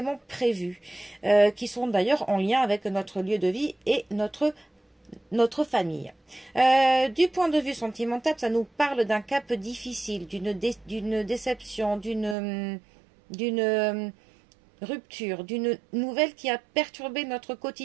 prévues, qui sont d'ailleurs en lien avec notre lieu de vie et notre famille. Du point de vue sentimental, ça nous parle d'un cap difficile, d'une déception, d'une rupture, d'une nouvelle qui a perturbé notre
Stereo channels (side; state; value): left; drops out; at 12.4 s